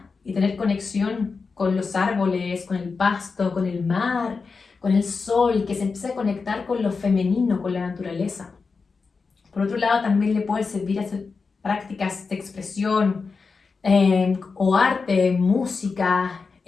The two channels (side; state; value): right; quieter; 4.7 dB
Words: y tener conexión con los árboles, con el pasto, con el mar, con el sol, que se empiece a conectar con lo femenino, con la naturaleza. Por otro lado, también le puede servir hacer prácticas de expresión o arte, música,